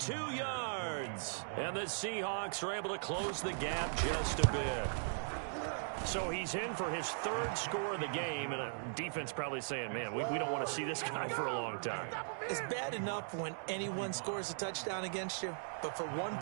yards. And the Seahawks are able to close the gap just a bit. So he's in for his third score of the game, and a defense probably saying, man, we don't want to see this guy for a long time. It's bad enough when anyone scores a touchdown against you, but for one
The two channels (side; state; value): left; silent; digital silence